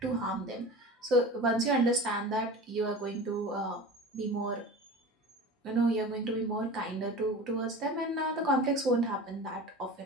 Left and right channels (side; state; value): both; normal; correlation 0.34